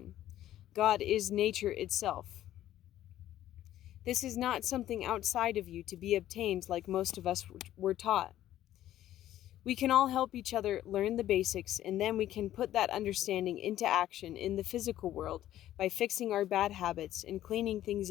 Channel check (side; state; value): right; quieter; 13.0 dB